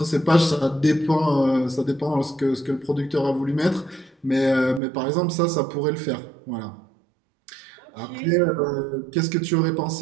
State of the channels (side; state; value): left; drops out; at 4.8 s